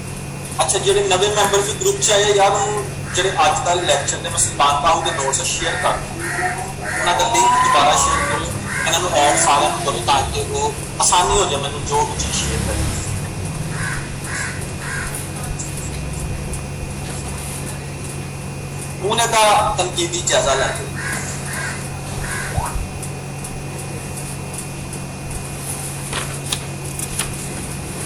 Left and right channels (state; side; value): identical; both; correlation 1.00